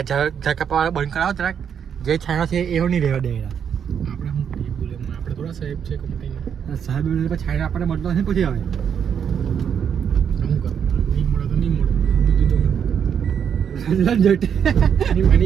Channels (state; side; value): quieter; left; 7.9 dB